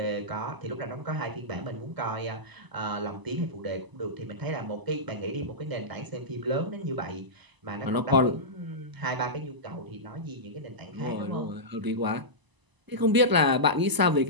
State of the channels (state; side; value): late; left; 1.0 ms